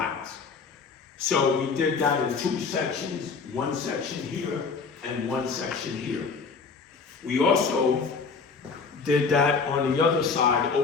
So we did that in 2 sections, 1 section here and 1 section here. We also did that on the other side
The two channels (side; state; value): right; quieter; 5.0 dB